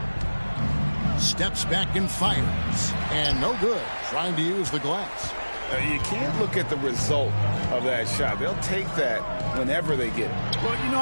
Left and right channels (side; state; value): both; inverted; correlation -1.00